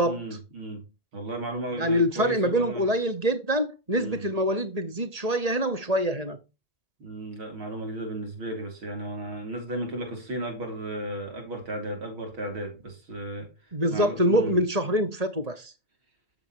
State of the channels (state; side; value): late; left; 1.8 ms